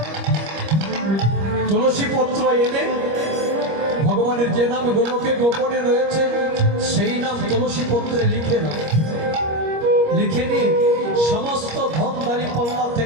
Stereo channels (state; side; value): late; left; 25 ms